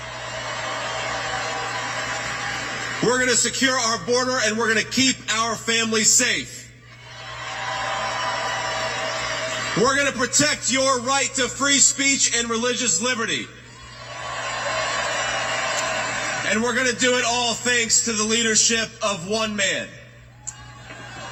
We're going to secure our border, and we're going to keep our families safe. We're going to protect your right to free speech and religious liberty. And we're going to do it all thanks to the leadership of one man.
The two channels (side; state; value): both; identical; correlation 1.00